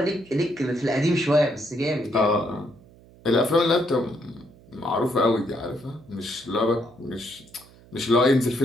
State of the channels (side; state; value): right; noise; hum, 25 dB below the sound